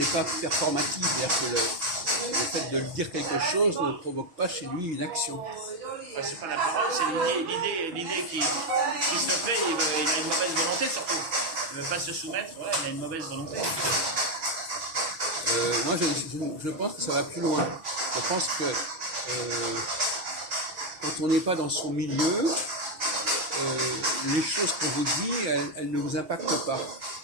pas performative, c'est-à-dire que le fait de dire quelque chose ne provoque pas chez lui une action. Enfin, c'est pas la parole, c'est l'idée qui se fait, il a une mauvaise volonté surtout. Il ne veut pas se soumettre, ouais, il a une mauvaise volonté. Moi, je pense que ça va plus loin. Je pense que quand on n'est pas dans son milieu, les choses qu'on vous dit, elles ne vous impactent pas.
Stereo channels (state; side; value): late; left; 6.2 ms